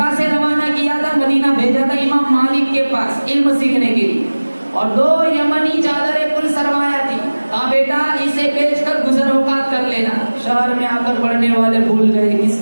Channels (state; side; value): inverted; both; correlation -1.00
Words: से रवाना किया था, मदीना भेजा था इमाम मालिक के पास इल्म सीखने के लिए, और 2 यमनी चादरें कुल सरमाया थी। कहा बेटा इसे बेचकर गुजर औकात कर लेना। शहर में आकर पढ़ने वाले भूल गए